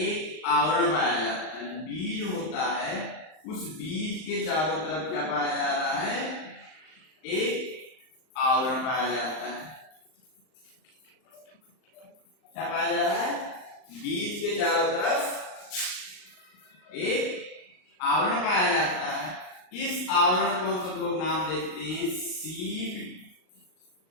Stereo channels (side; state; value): right; late; 38 ms